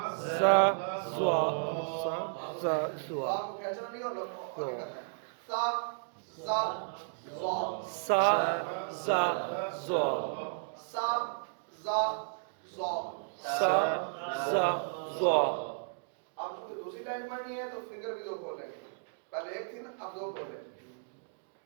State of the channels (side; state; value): left; silent; digital silence